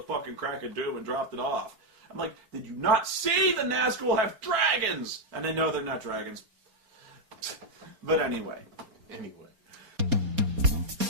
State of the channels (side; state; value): left; late; 4.3 ms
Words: crack of doom and dropped it off. I'm like, did you not see the Nazgul have dragons? And they know they're not dragons. But anyway.